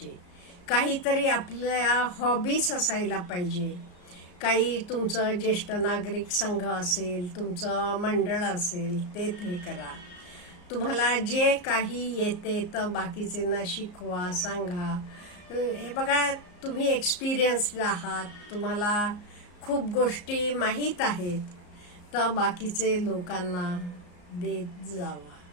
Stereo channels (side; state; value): right; late; 34 ms